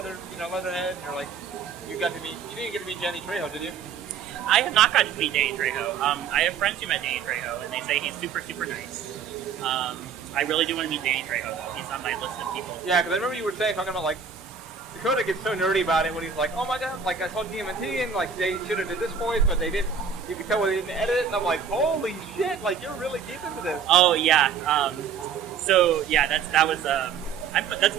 and you're like, you didn't get to meet Danny Trejo, did you? I have not gotten to meet Danny Trejo. I have friends who met Danny Trejo, and they say he's super, super nice. I really do want to meet Danny Trejo, though. He's on my list of people. Yeah, because I remember you were talking about like Dakota gets so nerdy about it when he's like, oh my god, like I saw TMNT and like they should have did this voice, but they didn't. You could tell when they didn't edit it, and I'm like, holy shit, like you're really deep into this. Oh yeah. So yeah, that was. That's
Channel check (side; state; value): left; quieter; 6.6 dB